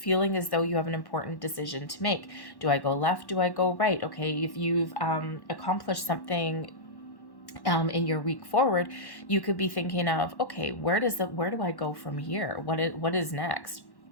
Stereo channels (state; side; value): late; right; 1.1 ms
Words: as though you have an important decision to make. Do I go left? Do I go right? Okay, if you've accomplished something in your week forward, you could be thinking of, okay, where do I go from here? What is next?